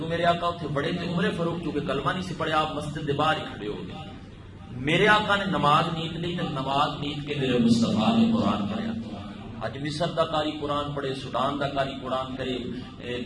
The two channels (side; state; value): both; identical; correlation 1.00